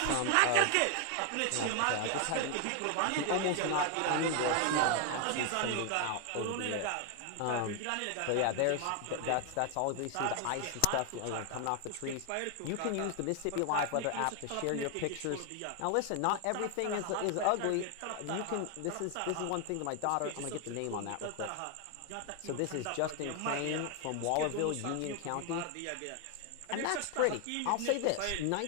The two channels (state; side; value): different; both; correlation 0.00